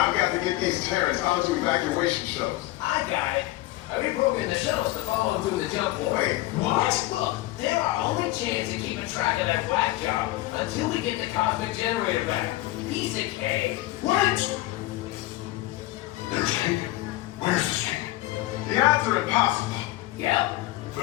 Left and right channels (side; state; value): right; quieter; 17.6 dB